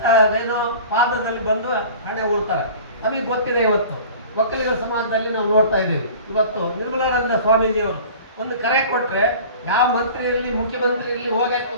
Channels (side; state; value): both; inverted; correlation -0.42